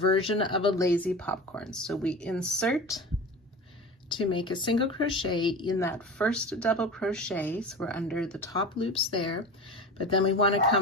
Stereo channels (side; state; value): both; normal; correlation 0.32